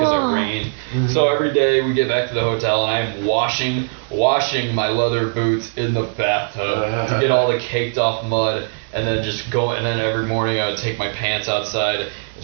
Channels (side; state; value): left; silent; digital silence